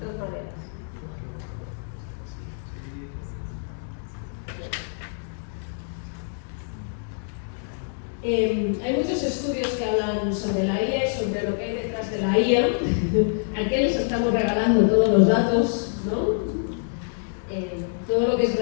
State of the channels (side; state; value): right; silent; digital silence